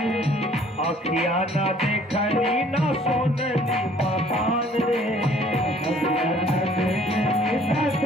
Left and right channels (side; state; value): both; normal; correlation 0.57